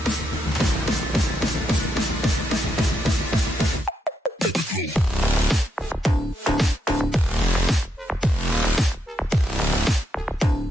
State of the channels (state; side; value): normal; both; correlation 0.81